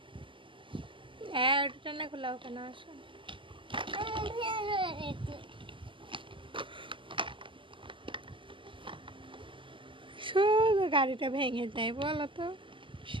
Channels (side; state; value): left; late; 0.25 ms